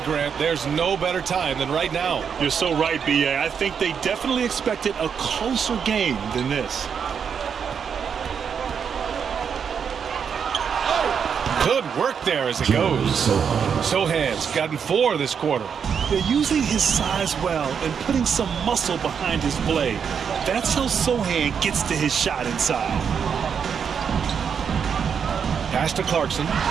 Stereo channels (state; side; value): quieter; left; 7.0 dB